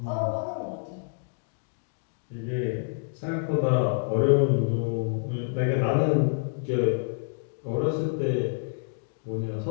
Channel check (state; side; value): silent; right; digital silence